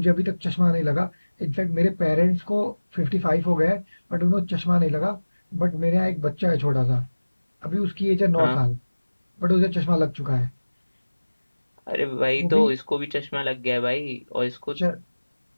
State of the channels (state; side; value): inverted; both; correlation -1.00